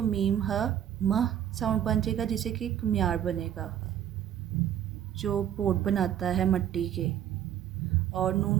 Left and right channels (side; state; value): left; quieter; 10.5 dB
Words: मीम ह म साउंड बन जाएगा, जिससे कि कुम्हार बनेगा, जो पोट बनाता है मट्टी के। और नून